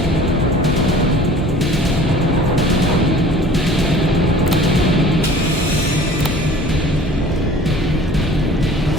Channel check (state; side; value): normal; both; correlation 0.47